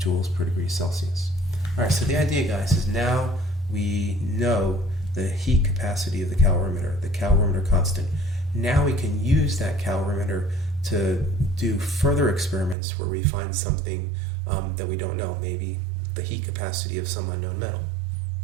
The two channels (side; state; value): left; drops out; at 12.8 s